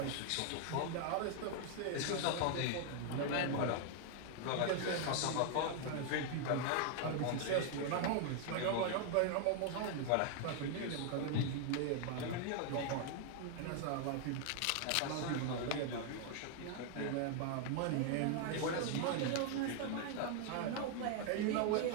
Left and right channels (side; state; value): both; different; correlation 0.00